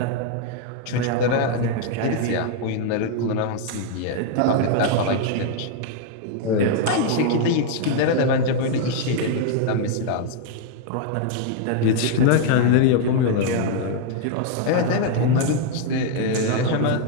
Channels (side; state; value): both; different; correlation 0.00